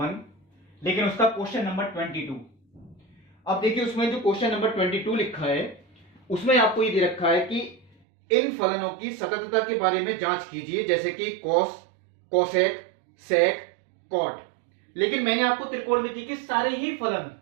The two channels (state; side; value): drops out; left; at 7.9 s